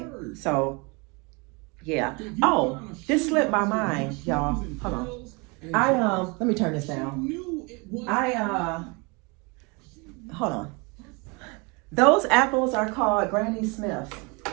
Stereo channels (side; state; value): left; quieter; 29.4 dB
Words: So yeah. Oh, this slipped my mind, y'all. Hold on. Let me turn this down. Hold on. Those apples are called Granny Smiths.